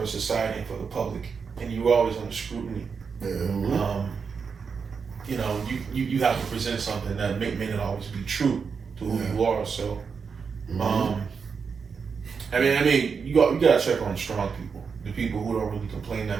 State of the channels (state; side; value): quieter; left; 5.8 dB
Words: society and for the public, and you're always under scrutiny. Mm-hmm. You know, you have to present something that may not always be true to who you are. So, I mean, you gotta check on strong people, the people who don't really complain